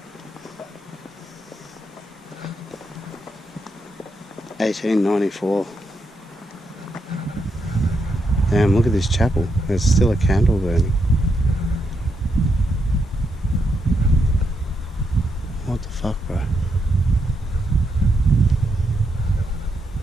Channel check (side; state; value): both; normal; correlation 0.81